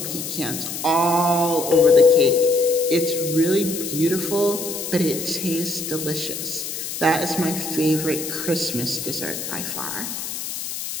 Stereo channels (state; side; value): noise; left; hiss, 6 dB below the sound